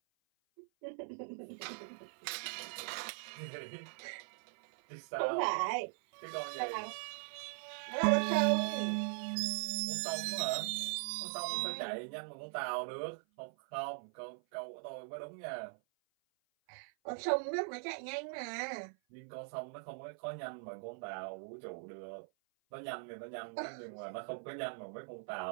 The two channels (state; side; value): silent; left; 51 dB below the other